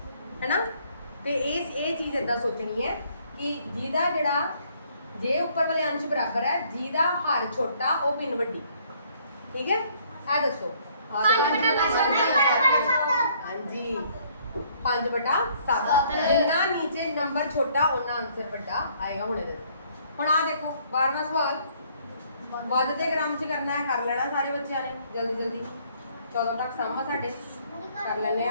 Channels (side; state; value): both; inverted; correlation -0.63